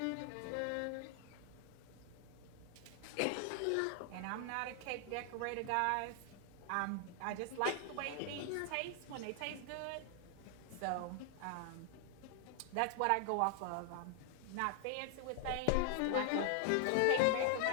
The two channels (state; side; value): different; both; correlation 0.00